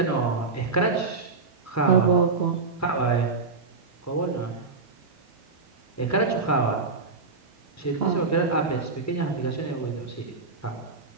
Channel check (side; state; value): left; quieter; 4.2 dB